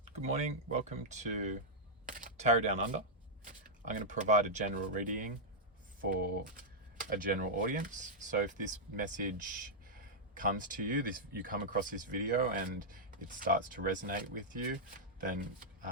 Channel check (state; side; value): normal; both; correlation -0.07